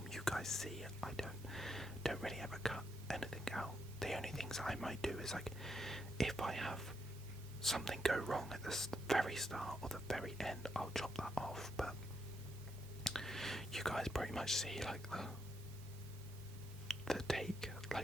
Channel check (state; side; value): normal; both; correlation 0.79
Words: you guys see. I don't really ever cut anything out. The only things I might do is like if I have something go wrong at the very start or the very end, I'll chop that off. But you guys pretty much see like the take